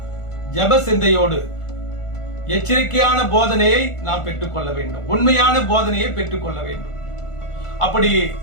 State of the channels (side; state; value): right; late; 1.4 ms